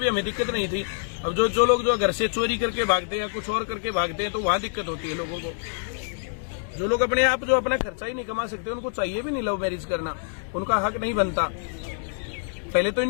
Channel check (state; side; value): silent; right; digital silence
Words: हमें दिक्कत नहीं थी। अब जो लोग जो घर से चोरी करके भागते हैं या कुछ और करके भागते हैं, तो वहां दिक्कत होती है लोगों को। जो लोग अपने आप जो अपना खर्चा ही नहीं कमा सकते, उनको चाहिए भी नहीं लव मैरिज करना, उनका हक नहीं बनता। पहले तो